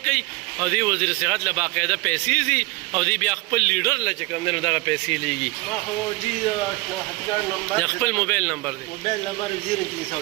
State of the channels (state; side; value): quieter; left; 23.0 dB